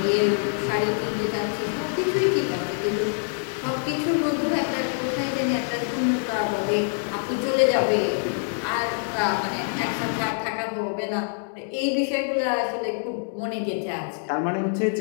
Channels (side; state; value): right; silent; 62 dB below the other